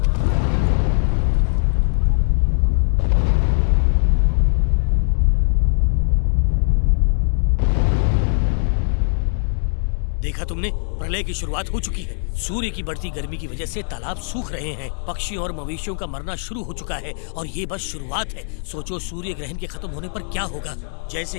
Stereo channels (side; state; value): right; silent; digital silence